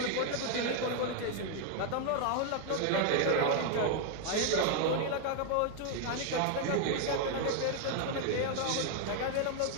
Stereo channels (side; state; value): both; different; correlation 0.00